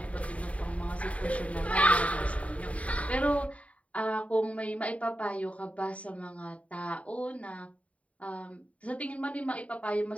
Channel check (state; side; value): late; right; 0.066 ms